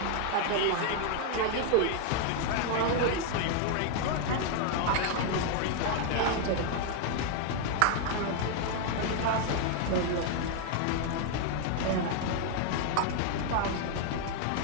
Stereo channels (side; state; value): both; different; correlation 0.00